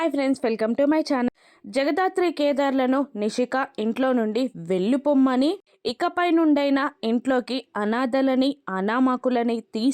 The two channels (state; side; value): identical; both; correlation 1.00